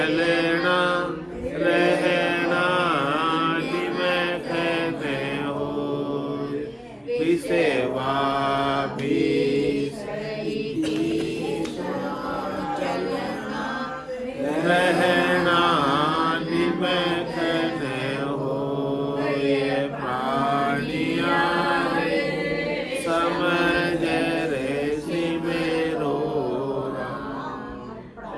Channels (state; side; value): identical; both; correlation 1.00